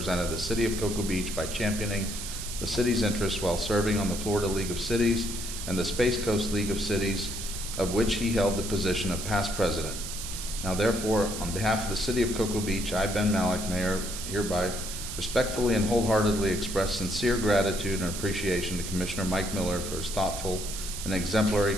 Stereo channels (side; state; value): right; noise; hiss, 7 dB below the sound